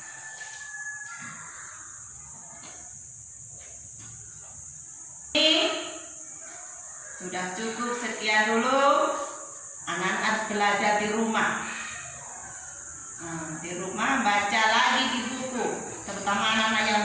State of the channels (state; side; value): identical; both; correlation 1.00